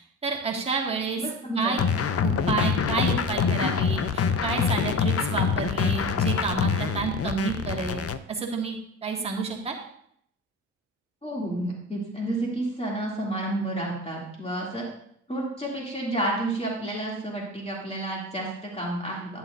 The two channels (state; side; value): normal; both; correlation 0.32